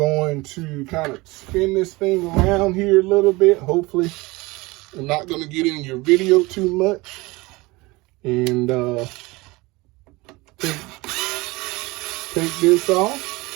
to kind of spin this thing around here a little bit. Hopefully I'm not going to get in your video too much. And take this off.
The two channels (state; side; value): quieter; left; 22.7 dB